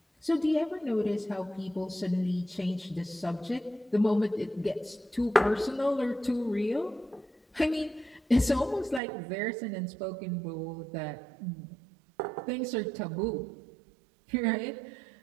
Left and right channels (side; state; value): left; drops out; at 9.0 s